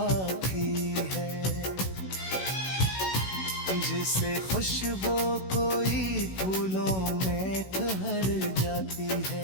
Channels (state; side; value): late; right; 16 ms